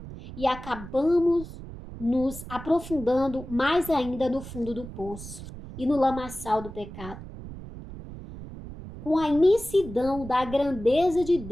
e acabamos nos aprofundando mais ainda no fundo do poço e no lamaçal do pecado. Com a imensidão da grandeza de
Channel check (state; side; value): noise; right; rumble, 13 dB below the sound